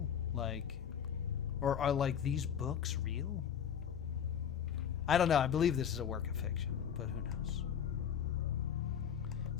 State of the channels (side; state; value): right; quieter; 8.4 dB